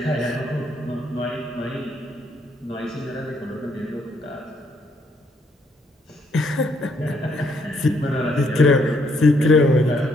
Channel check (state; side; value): normal; both; correlation 0.72